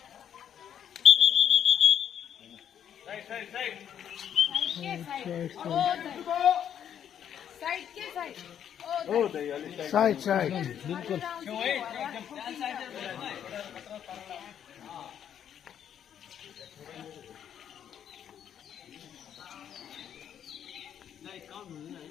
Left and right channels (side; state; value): right; quieter; 9.3 dB